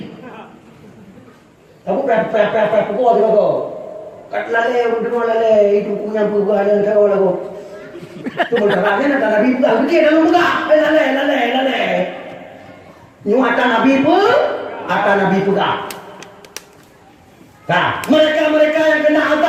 Aku pepe pukul dia kau. Kat lalai, dengar lalai, itu punya perubahan yang kau lagu. Cuma caranya nak Nabi pegang, begitu dalam pegang. Lalai. Nyuatan Nabi pun, akan Nabi pegang. Nah, mereka yang kena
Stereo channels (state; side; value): identical; both; correlation 1.00